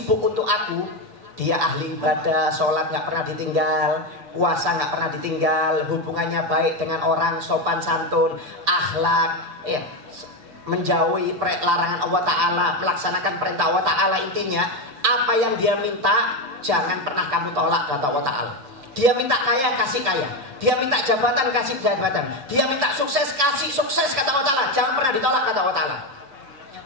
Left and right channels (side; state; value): left; late; 7.3 ms